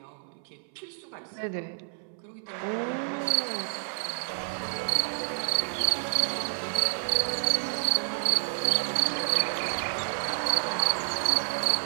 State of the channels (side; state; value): left; silent; 58 dB below the other